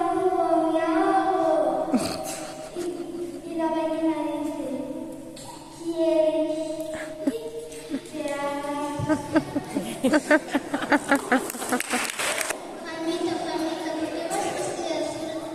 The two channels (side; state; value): both; identical; correlation 1.00